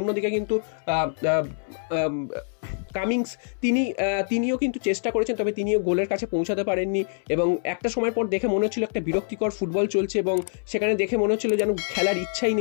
কিন্তু কামিংস তিনিও কিন্তু চেষ্টা করেছেন, তবে তিনিও গোলের কাছে পৌঁছাতে পারেননি। এবং একটা সময় পর দেখে মনে হচ্ছিল একটা বিরক্তিকর ফুটবল চলছে এবং সেখানে দেখে মনে হচ্ছিল যেন খেলার ইচ্ছাই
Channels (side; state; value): right; silent; 62 dB below the other